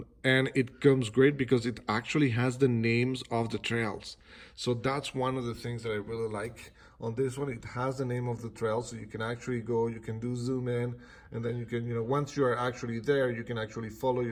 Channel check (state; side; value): identical; both; correlation 1.00